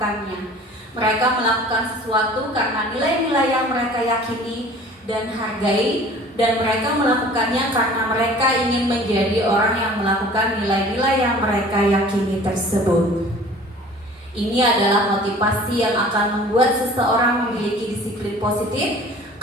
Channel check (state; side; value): normal; both; correlation 0.47